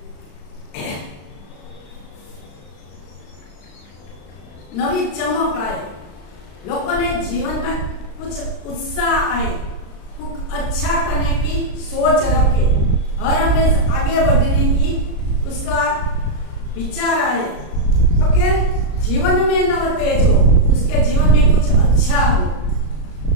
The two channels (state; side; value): late; right; 36 ms